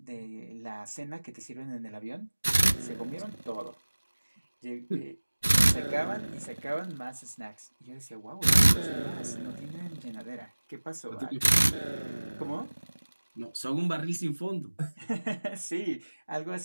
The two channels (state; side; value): inverted; both; correlation -1.00